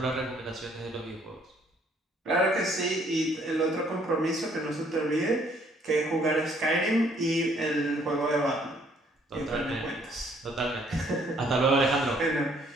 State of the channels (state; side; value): normal; both; correlation 0.64